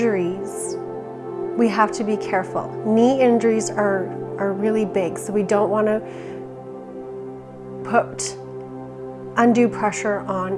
we have to be careful. Knee injuries are really big, so we don't want to put undue pressure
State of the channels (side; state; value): both; identical; correlation 1.00